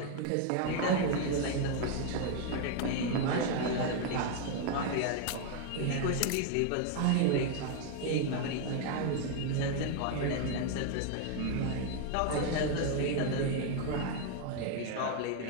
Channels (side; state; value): both; different; correlation 0.01